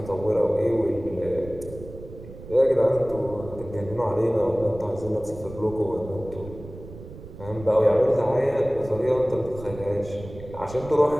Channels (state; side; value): noise; right; rumble, 15 dB below the sound